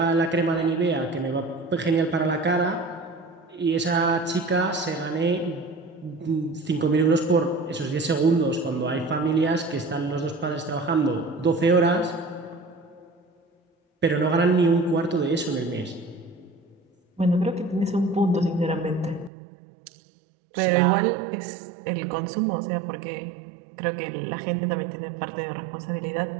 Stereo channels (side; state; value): left; drops out; at 19.3 s